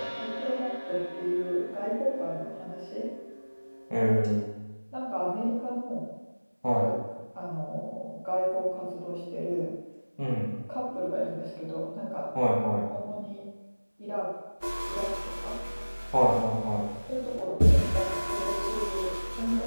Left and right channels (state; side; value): inverted; both; correlation -1.00